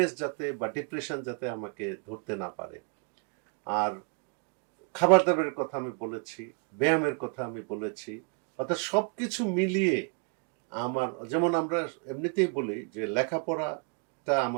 যাতে বা ডিপ্রেশন যাতে আমাকে ধরতে না পারে। আর খাবার দাবারের কথা আমি বলেছি, ব্যায়ামের কথা আমি বলেছি, অর্থাৎ সবকিছু মিলিয়ে আমার, যেমন আমরা এমনিতেই বলি যে লেখাপড়াটা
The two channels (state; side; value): quieter; left; 36.8 dB